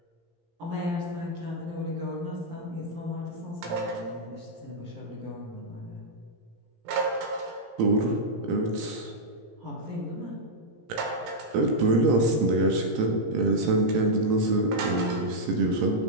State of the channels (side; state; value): left; late; 17 ms